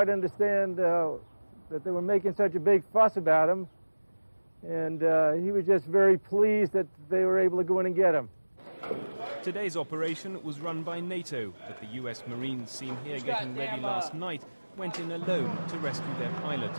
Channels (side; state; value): both; inverted; correlation -1.00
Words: understand that they were making such a big fuss about him, and he was just very pleased that they were able to go in and get him. Today's operation was run by NATO, but the U.S. Marines seen here getting ready last night went in alone to rescue their pilot.